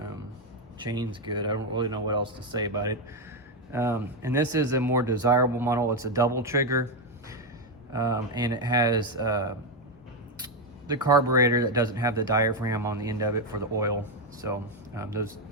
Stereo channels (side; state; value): both; normal; correlation 0.06